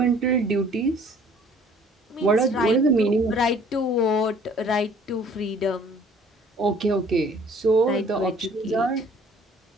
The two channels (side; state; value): both; normal; correlation 0.55